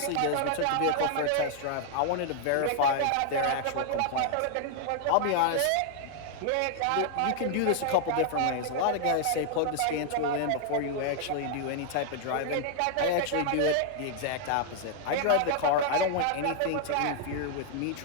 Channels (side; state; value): both; different; correlation 0.00